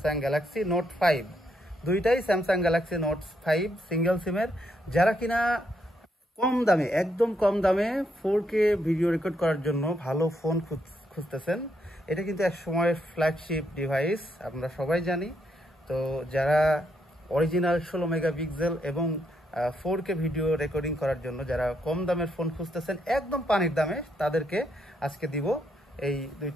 গ্যালাক্সি নোট 5, দুইটাই স্যামসাং গ্যালাক্সি নোট 5 সিঙ্গেল সিমের। যারা কিনা কম দামে, একদম কম দামে 4K ভিডিও রেকর্ড করার জন্য ভালো ফোন খুঁজতেছেন, এটা কিন্তু এক সময়ের ফ্ল্যাগশিপ ডিভাইস, আমরা সবাই জানি। তো যারা অরিজিনাল 16 মেগাপিক্সেল এবং 4K ভিডিও রেকর্ডিং করার জন্য যারা কম দামের ফোন খুঁজতেছেন একদম পানির দামে, তাদেরকে আজকে দিব এই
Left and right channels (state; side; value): normal; both; correlation 0.77